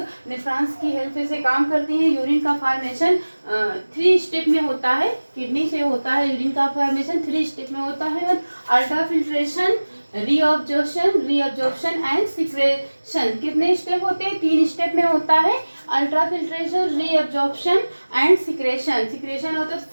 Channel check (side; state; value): both; inverted; correlation -1.00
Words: नेफ्रॉन्स की हेल्प से काम करती है. यूरिन का फॉर्मेशन 3 स्टेप में होता है. किडनी से होता है यूरिन का फॉर्मेशन 3 स्टेप में होता है. Ultrafiltration, reabsorption and secretion. कितने स्टेप होते हैं, 3 स्टेप में होता है. अल्ट्राफिल्ट्रेशन, रीअब्जॉर्प्शन एंड सिक्रेशन होता है.